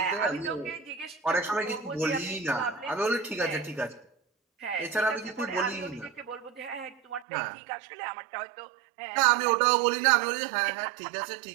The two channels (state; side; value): drops out; left; at 7.2 s